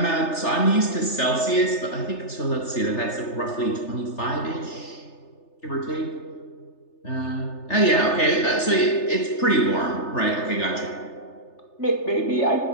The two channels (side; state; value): right; late; 3.3 ms